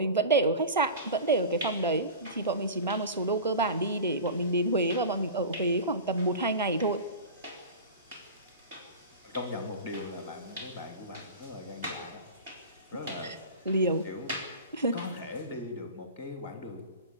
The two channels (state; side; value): inverted; both; correlation -0.31